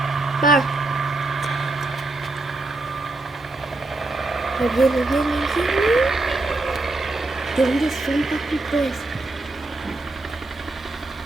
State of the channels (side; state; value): left; quieter; 3.0 dB